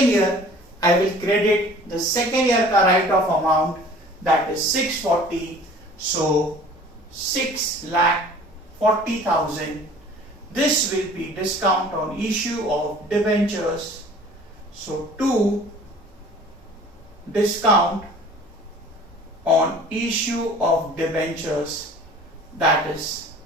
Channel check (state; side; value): normal; both; correlation 0.48